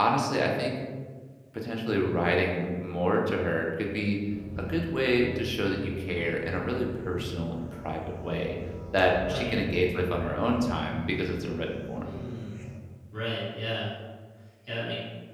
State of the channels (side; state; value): both; identical; correlation 1.00